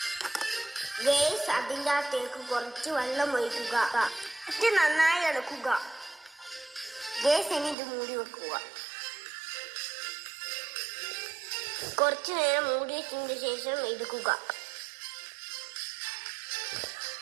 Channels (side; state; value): left; drops out; at 7.8 s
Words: ഗൈസ്, അതിൻ്റെ അകത്തേക്ക് കുറച്ച് വെള്ളം ഒഴിക്കുക. എന്നിട്ട് നന്നായി ഇളക്കുക. ഗൈസ്, ഇനി ഇത് മൂടി വെക്കുക. കുറച്ചു നേരം മൂടി വെച്ചതിന് ശേഷം എടുക്കുക.